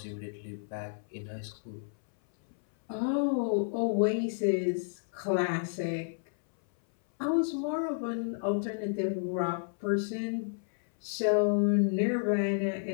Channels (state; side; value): silent; right; 57 dB below the other